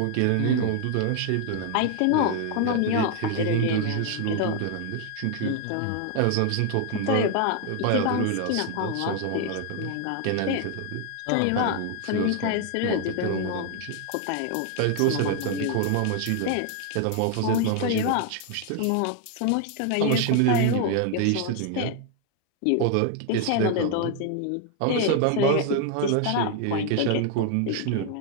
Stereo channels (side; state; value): both; different; correlation 0.00